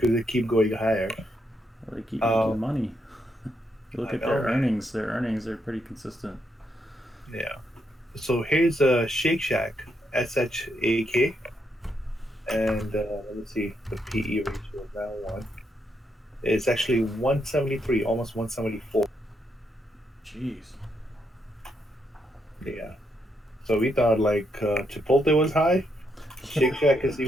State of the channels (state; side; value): normal; both; correlation 0.79